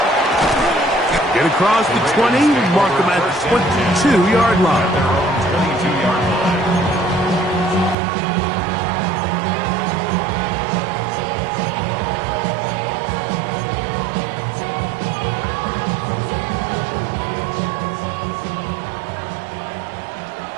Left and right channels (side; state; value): left; drops out; at 8.0 s